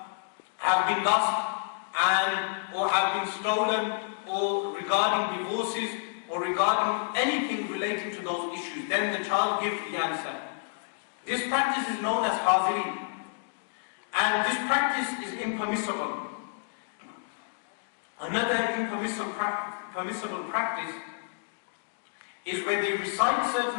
been lost or have been stolen, or regarding divorces, or regarding anything relating to those issues. Then the child gives the answer. This practice is known as Hazri, and this practice is impermissible. Another permissible practice is where they recite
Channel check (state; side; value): silent; right; digital silence